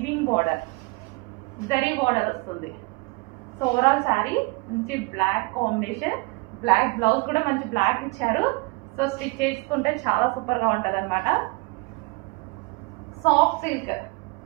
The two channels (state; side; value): quieter; left; 27.4 dB